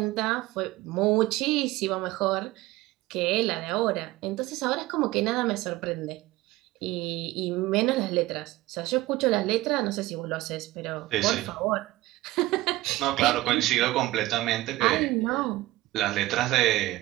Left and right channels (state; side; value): quieter; left; 17.9 dB